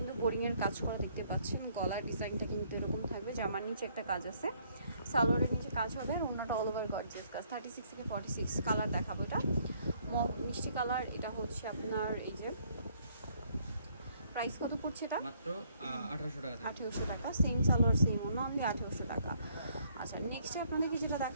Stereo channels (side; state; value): both; inverted; correlation -0.66